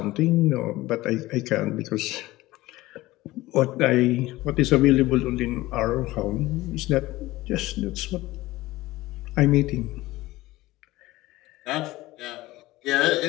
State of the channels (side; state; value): right; quieter; 18.3 dB